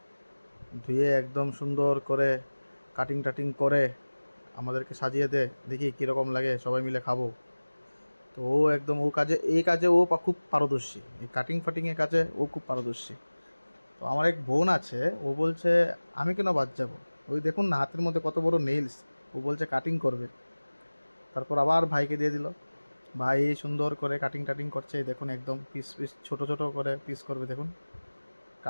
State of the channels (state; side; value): inverted; both; correlation -1.00